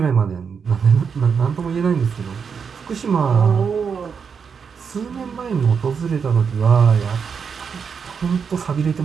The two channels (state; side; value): quieter; left; 6.3 dB